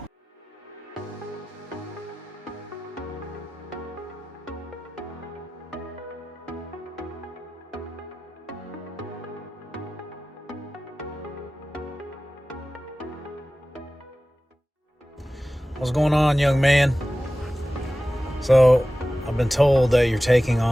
What's going on, young man? So, I've been told that you're taking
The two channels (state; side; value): normal; both; correlation 0.96